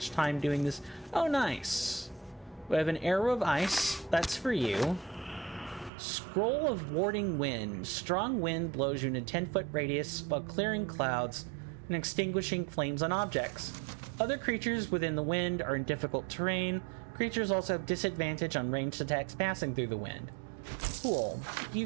time doing this. Oh, nice. We have an arrow of ice. That's for you. Scroll of warding wind. Strong wind blows you in a 10-foot radius while clearing clouds and extinguishing flames on objects. Other creatures within the wind are in difficult terrain. Creatures also have disadvantage on ranged attacks passing through the wind. Cool. You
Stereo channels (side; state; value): left; drops out; at 5.9 s